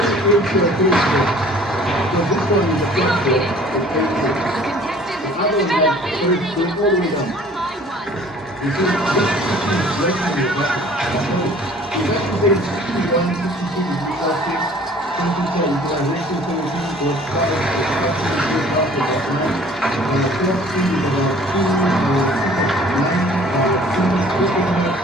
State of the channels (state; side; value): normal; both; correlation 0.51